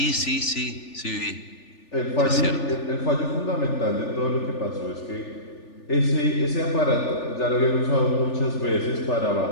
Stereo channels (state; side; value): late; right; 3.4 ms